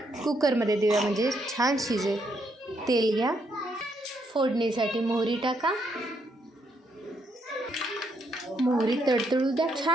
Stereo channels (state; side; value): normal; both; correlation 0.75